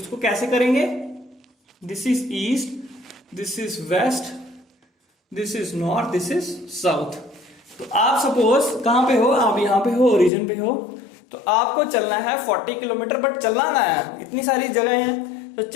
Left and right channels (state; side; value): drops out; right; at 10.3 s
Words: कैसे करेंगे? This is east, this is west, this is north, this is south. तो आप सपोज कहां पे हो? आप यहां पे हो, ओरिजिन पे हो, तो आपको चलना है 40 किलोमीटर, बट चलना ना है, इतनी सारी जगह है, तो